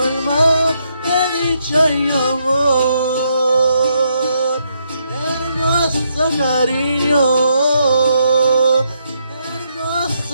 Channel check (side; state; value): both; inverted; correlation -0.77